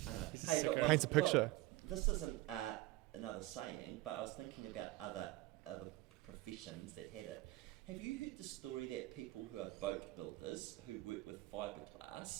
know. Hey, paints a picture. This isn't another saying, but I was thinking about other professions that had it. Have you heard the story that people who are boat builders who work with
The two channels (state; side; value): quieter; left; 18.0 dB